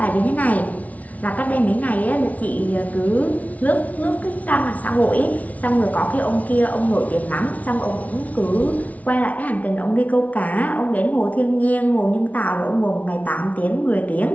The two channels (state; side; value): late; right; 0.070 ms